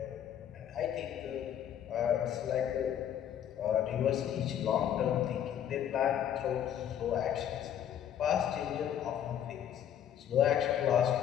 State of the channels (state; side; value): quieter; right; 9.9 dB